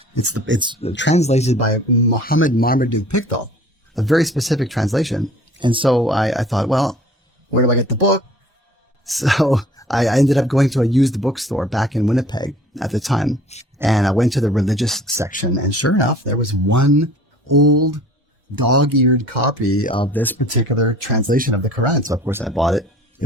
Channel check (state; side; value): normal; both; correlation 0.49